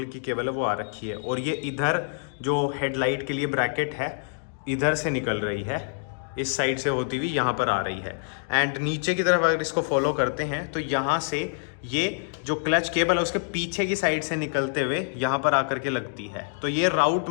की केबल है वो आ रखी है, और ये इधर जो हेडलाइट के लिए ब्रैकेट है इधर से निकल रही है। इस साइड से होती हुई यहाँ पर आ रही है। एंड नीचे की तरफ अगर इसको फॉलो करते हैं तो यहाँ से ये जो क्लच केबल है उसके पीछे की साइड से निकलते हुए यहाँ पर आकर के लगती है। तो ये राउट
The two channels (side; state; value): right; silent; digital silence